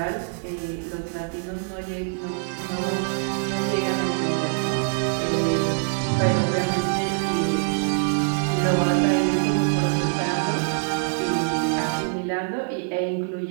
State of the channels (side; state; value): left; silent; digital silence